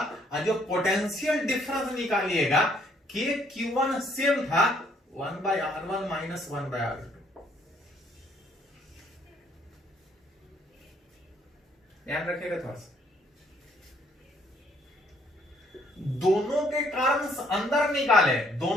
और जो पोटेंशियल डिफरेंस निकालिएगा KQ1 सेम था 1/R1 माइनस 1/R2। ध्यान रखिएगा थोड़ा सा। दोनों के कारण अंदर निकाले,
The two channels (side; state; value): both; normal; correlation 0.66